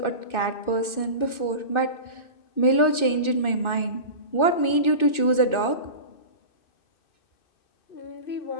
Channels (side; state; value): right; late; 2.6 ms